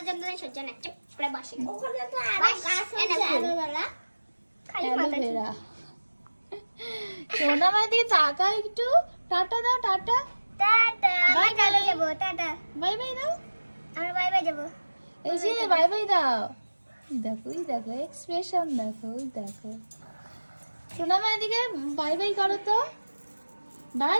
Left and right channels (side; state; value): both; inverted; correlation -1.00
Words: যন্ত্রণা সহ্য না, চুপ করে বসে। ওখানে তো আরো গাছ আছে আলোবেলা। খালি মাথা অ্যালোভেরা। সোনা মায়ের দিকে তাকা একটু। টাটা দাও, টাটা। টাটা, Bye বাই চলে bye. যাব, টাটা। বাই বাই দাও। আমরা বাই বাই যাব। এই যে বাই বাই দাও। দেখো, এই দেখো এক্সপ্রেশন দেখো, ওই দেখো। সোনা মায়ের দিকে বাই বাই করো তো।